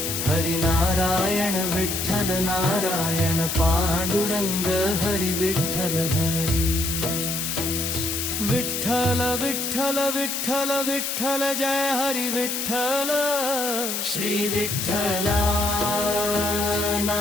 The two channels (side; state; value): left; noise; hiss, 2 dB below the sound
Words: हरी नारायण विठ्ठल नारायण पांडुरंग हरी विठ्ठल हरी। विठ्ठल विठ्ठल विठ्ठल विठ्ठल जय हरी विठ्ठल। श्री विठ्ठला